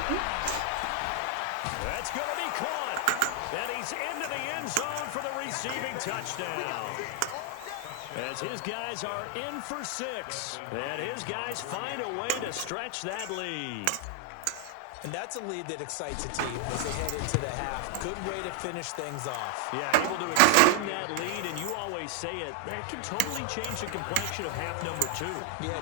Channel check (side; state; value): both; different; correlation 0.00